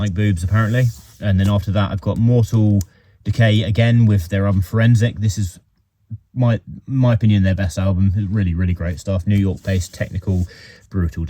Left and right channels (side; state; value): both; identical; correlation 1.00